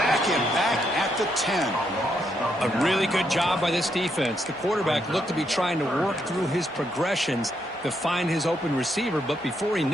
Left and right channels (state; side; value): normal; both; correlation 0.77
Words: him back at the 10. A really good job by this defense. The quarterback looked to be trying to work through his progressions to find his open receiver, but before he